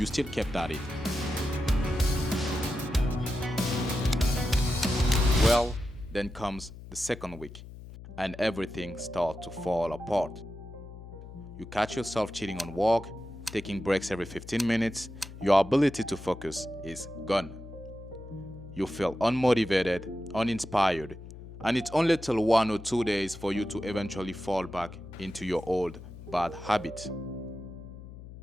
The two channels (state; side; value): noise; left; hum, 14 dB below the sound